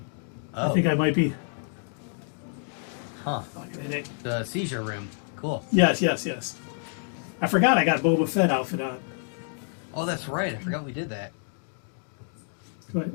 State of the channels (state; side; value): silent; right; 59 dB below the other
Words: Oh. I think I might be... Huh. The seizure room. Cool. Yes. I forgot I got Boba Fett outfit on. Oh, that's right. I forgot we did that.